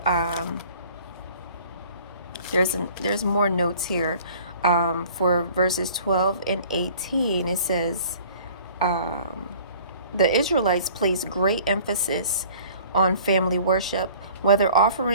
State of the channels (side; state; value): both; inverted; correlation -0.50